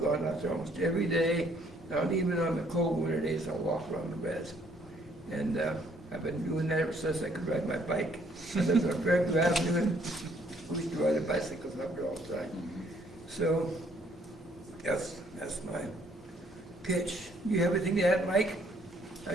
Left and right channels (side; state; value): both; normal; correlation 0.65